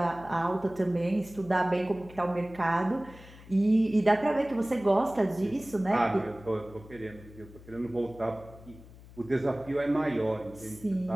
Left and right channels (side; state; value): left; noise; hum, 20 dB below the sound